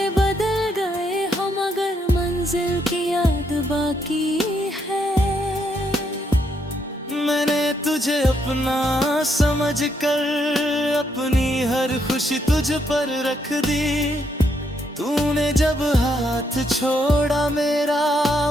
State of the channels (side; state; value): both; normal; correlation 0.75